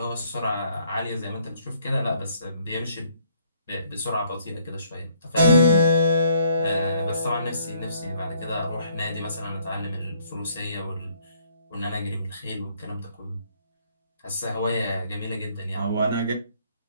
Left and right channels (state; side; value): inverted; both; correlation -0.66